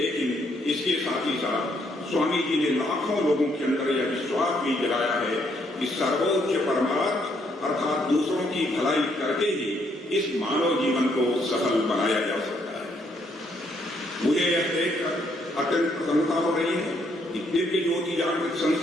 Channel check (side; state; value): both; normal; correlation 0.71